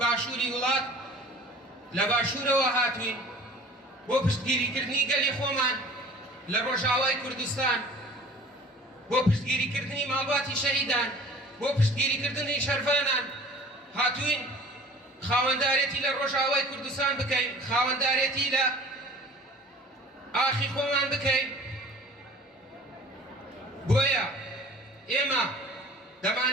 وڵات لە باشوورەوە هاتوین بۆ پشتگیریکردنی گەلی خۆمان لە ڕۆژاوای کوردستان، بۆ پشتگیریکردنی ماڵباتی شەهیدان، بۆ پشتگیریکردنی شەرفانان هاتوین خاوەندارێتی لە ڕۆژاوای کوردستان بکەین، خاوەندارێتی لە ئاخی خۆمان بکەین. بۆیە ئێمە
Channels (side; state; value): both; normal; correlation 0.46